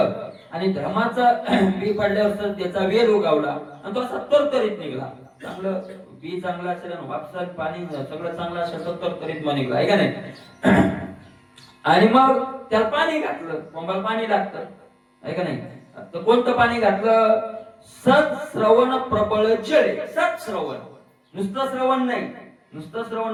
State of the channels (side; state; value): both; identical; correlation 1.00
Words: आणि धर्माचं बी पडल्यावर त्याचा वेल उगावला आणि तो असा तरतरीत निघला. चांगलं बी चांगलं असेल आणि वापसात पाणी सगळं चांगलं असेल तर तरतरीत मग निघला आहे का नाही. आणि मग त्याला पाणी घातलं, कोंबाला पाणी लागतं आहे का नाही. तर कोणतं पाणी घातलं. सत्श्रवण प्रबळ जळे. सत्श्रवण, नुसतं श्रवण नाही, नुसतं श्रवण